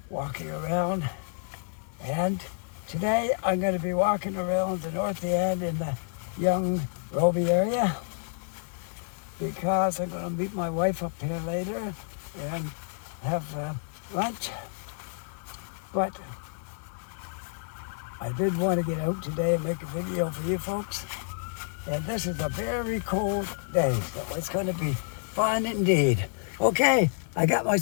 walking around. And today I'm going to be walking around the north end in the young Robie area, because I'm going to meet my wife up here later and have lunch. But I did want to get out today and make a video for you folks. And this is a very cold day, so it's going to be fun indeed. Okay, I got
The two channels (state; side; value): silent; right; 59 dB below the other